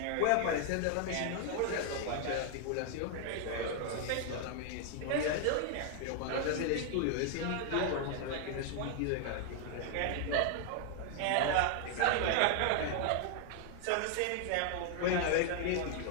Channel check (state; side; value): different; both; correlation 0.00